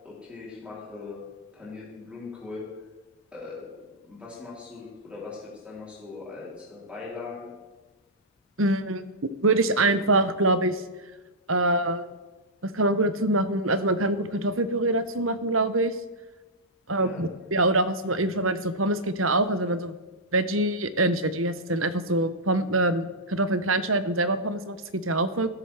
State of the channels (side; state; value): both; normal; correlation -0.11